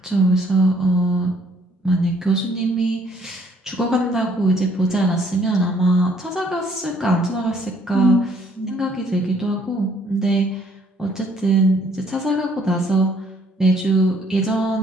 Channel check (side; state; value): both; normal; correlation 0.64